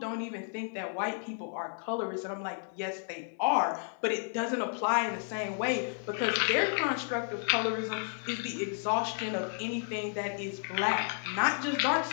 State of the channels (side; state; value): right; silent; 56 dB below the other